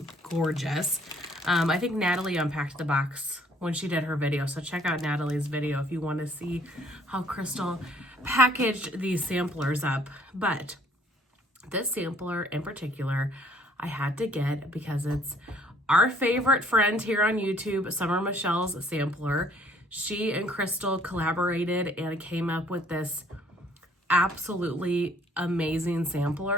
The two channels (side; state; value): both; normal; correlation 0.61